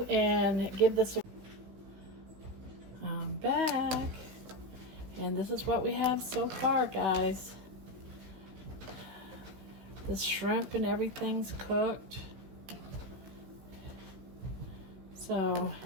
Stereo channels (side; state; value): left; late; 16 ms